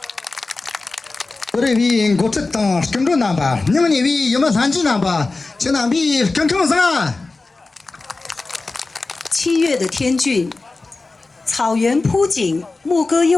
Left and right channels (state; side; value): quieter; right; 3.5 dB